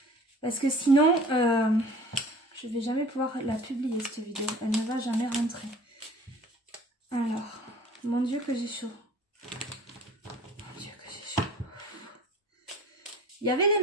Parce que sinon, je vais jamais pouvoir la publier cette vidéo. Elle ne va jamais rentrer. Alors, mon Dieu que j'ai chaud. Mon Dieu que j'ai chaud. Il y avait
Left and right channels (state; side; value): normal; both; correlation 0.46